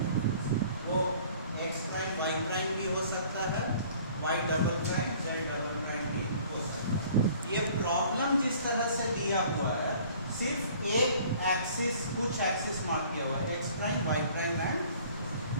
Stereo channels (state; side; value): inverted; both; correlation -0.53